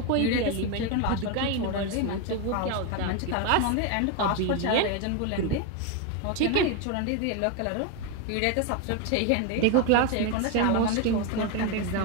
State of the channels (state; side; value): different; both; correlation 0.02